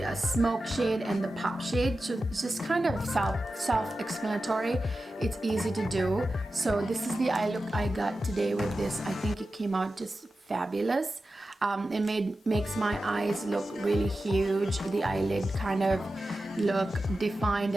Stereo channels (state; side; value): normal; both; correlation 0.93